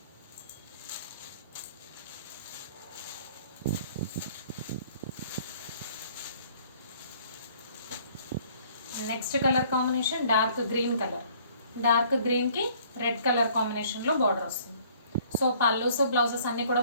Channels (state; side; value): inverted; both; correlation -0.58